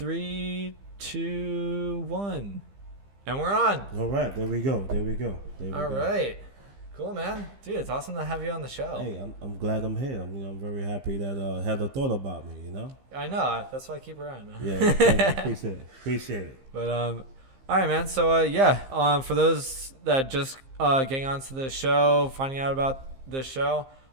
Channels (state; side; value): late; left; 15 ms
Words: two, one, and we're on. All right, there we go. There we go. There we All go. right, cool, man. Dude, it's awesome to have you on the show. Hey, I'm glad I'm here. I'm very happy that Heather thought about me. I know. That's why I keep around. Yeah, thank you. Appreciate it. Appreciate it. But all right, man. So for those that just getting onto the show, finding out about the show,